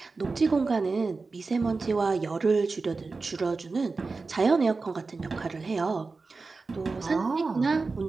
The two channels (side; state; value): left; quieter; 4.1 dB